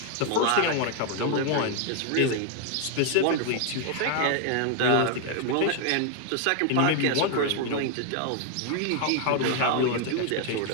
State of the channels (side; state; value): both; different; correlation 0.00